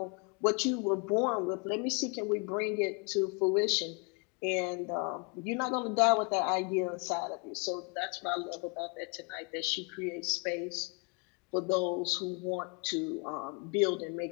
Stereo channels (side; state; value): right; quieter; 34.6 dB